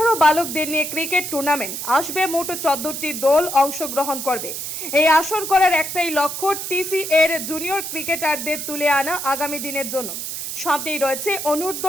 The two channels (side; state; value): right; noise; hiss, 6 dB below the sound